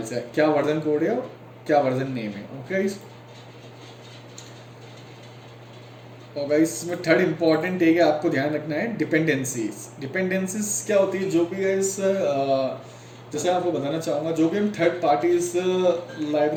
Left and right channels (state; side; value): identical; both; correlation 1.00